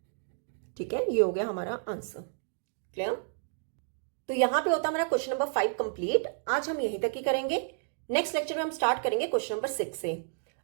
ठीक है, ये हो गया हमारा आंसर। क्लियर। तो यहां पे होता हमारा क्वेश्चन नंबर 5 कंप्लीट। आज हम यहीं तक ही करेंगे। नेक्स्ट लेक्चर में हम स्टार्ट करेंगे क्वेश्चन नंबर 6 से।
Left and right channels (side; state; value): left; silent; digital silence